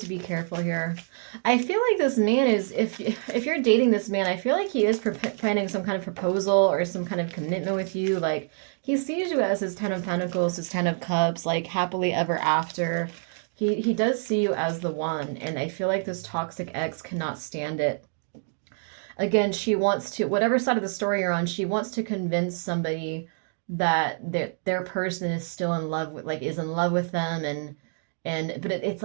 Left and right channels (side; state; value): left; silent; digital silence